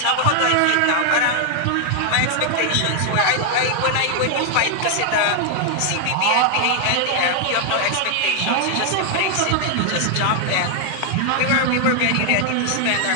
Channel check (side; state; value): both; different; correlation 0.00